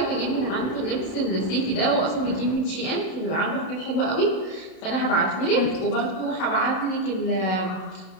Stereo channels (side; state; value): right; late; 32 ms